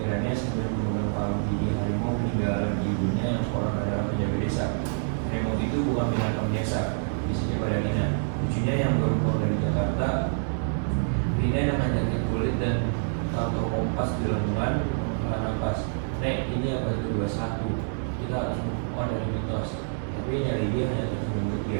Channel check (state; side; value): silent; left; digital silence